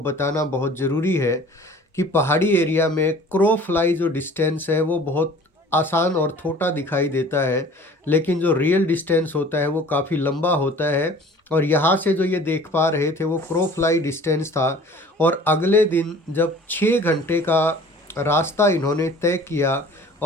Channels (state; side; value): normal; both; correlation 0.47